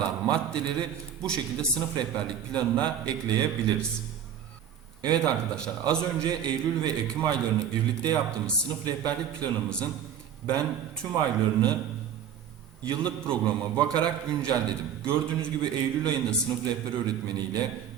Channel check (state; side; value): quieter; left; 9.1 dB